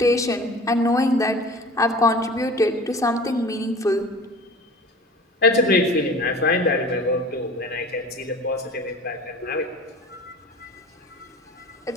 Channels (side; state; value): both; normal; correlation 0.41